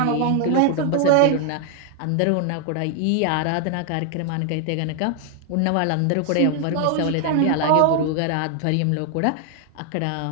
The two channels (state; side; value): different; both; correlation 0.00